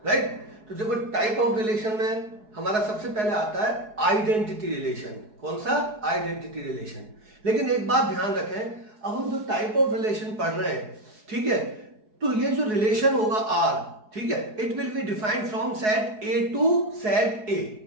राइट। तो देखो टाइप ऑफ रिलेशन में हमारा सबसे पहले आता है आइडेंटिटी रिलेशन। कौन सा? Identity relation. लेकिन एक बात ध्यान रखें, अब हम जो टाइप ऑफ रिलेशन पढ़ रहे हैं, ठीक है, तो ये जो रिलेशन होगा आर, ठीक है, it will be defined from set A to set A.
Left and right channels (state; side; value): late; left; 4.7 ms